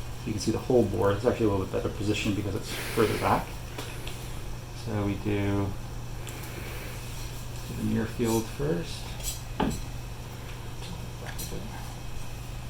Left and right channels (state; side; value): identical; both; correlation 1.00